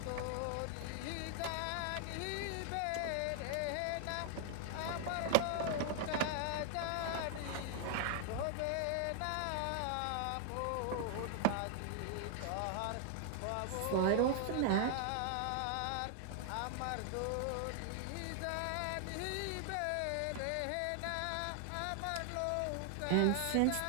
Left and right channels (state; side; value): different; both; correlation 0.00